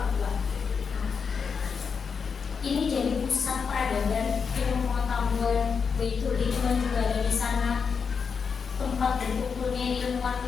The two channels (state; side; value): quieter; right; 5.9 dB